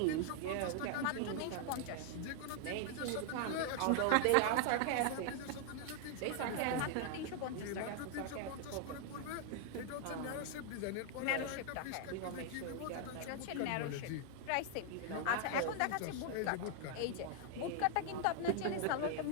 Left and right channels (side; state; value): both; different; correlation 0.00